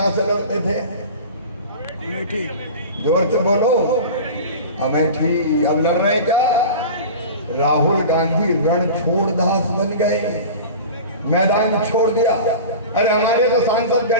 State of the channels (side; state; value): both; inverted; correlation -0.34